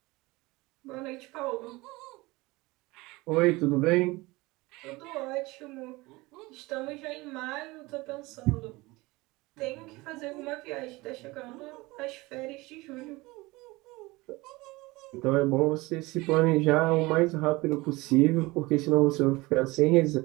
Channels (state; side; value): quieter; left; 22.1 dB